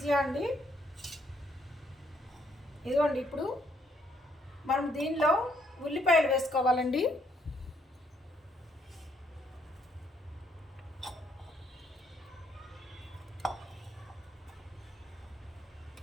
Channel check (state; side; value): normal; both; correlation 0.71